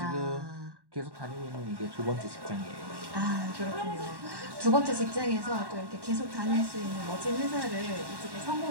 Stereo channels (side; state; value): left; late; 1.1 ms